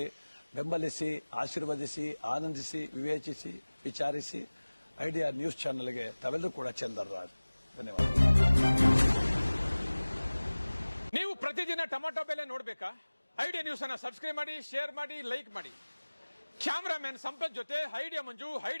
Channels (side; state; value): both; inverted; correlation -1.00